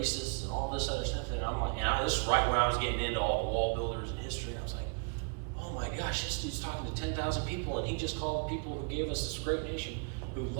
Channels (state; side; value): quieter; left; 38.8 dB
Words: and all this other stuff. And I'm like, this is right when I was getting into all the wall builders and history, and I was like, oh my gosh, this dude's talking to 10,000 people, and he just called people who gave us this great nation, who